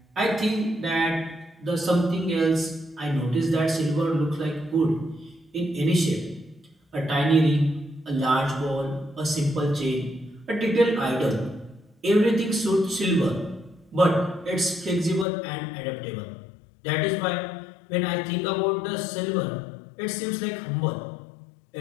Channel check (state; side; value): drops out; right; at 15.2 s